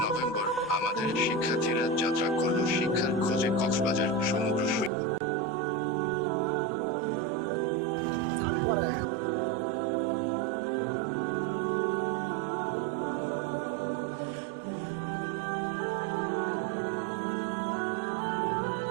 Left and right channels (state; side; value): drops out; left; at 4.9 s